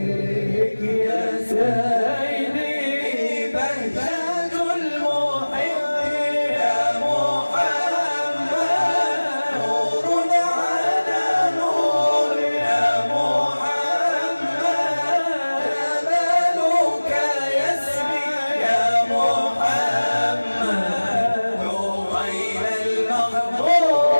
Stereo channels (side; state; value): both; inverted; correlation -1.00